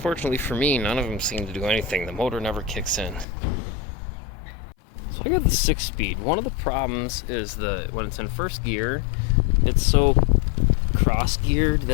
for me, none of them seem to do anything. The motor never kicks in. So I got the 6-speed. One of the problems is when it's in first gear, it's so cross-geared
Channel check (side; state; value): right; drops out; at 3.2 s